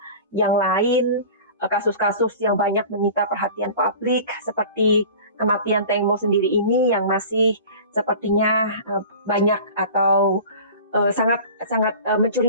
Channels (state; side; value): inverted; both; correlation -0.39